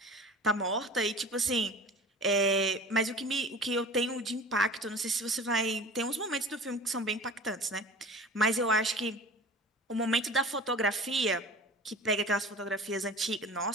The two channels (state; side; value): normal; both; correlation 0.39